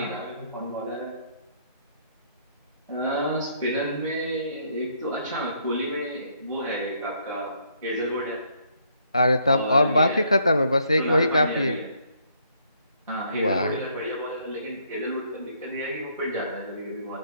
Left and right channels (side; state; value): both; inverted; correlation -0.69